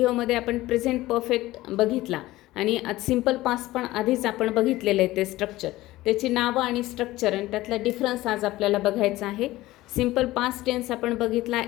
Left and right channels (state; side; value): quieter; right; 17.3 dB